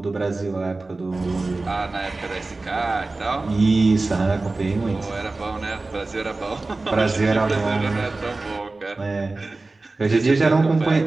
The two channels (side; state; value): left; quieter; 3.3 dB